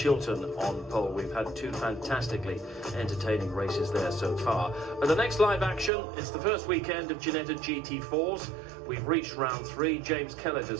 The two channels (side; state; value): left; drops out; at 5.9 s